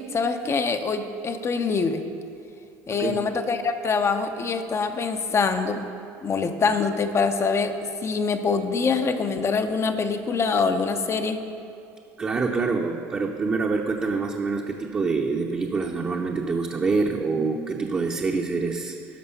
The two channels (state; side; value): normal; both; correlation 0.60